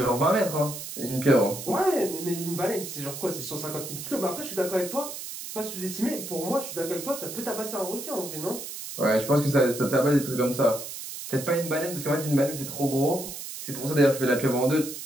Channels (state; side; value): noise; right; hiss, 9 dB below the sound